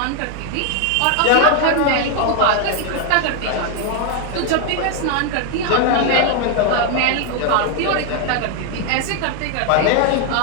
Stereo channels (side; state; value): both; different; correlation 0.00